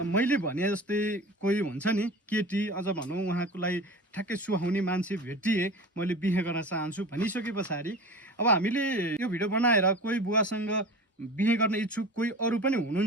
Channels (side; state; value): both; normal; correlation 0.35